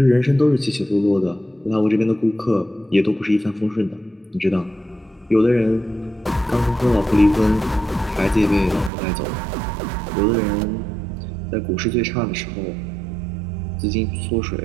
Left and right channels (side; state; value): left; drops out; at 8.9 s